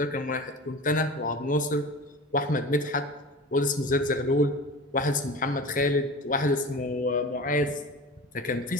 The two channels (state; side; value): normal; both; correlation 0.34